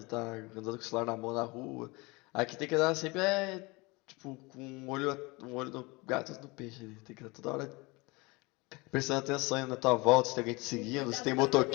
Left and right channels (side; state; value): right; quieter; 25.2 dB